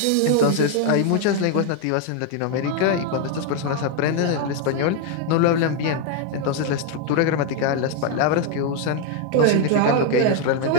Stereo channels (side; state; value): both; different; correlation 0.01